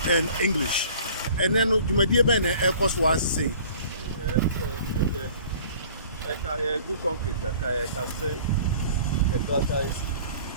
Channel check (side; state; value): both; inverted; correlation -0.49